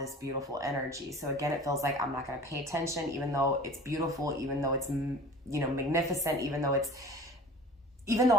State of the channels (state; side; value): normal; both; correlation 0.41